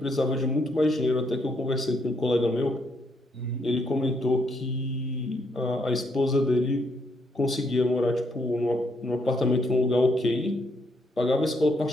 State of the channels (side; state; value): both; normal; correlation 0.74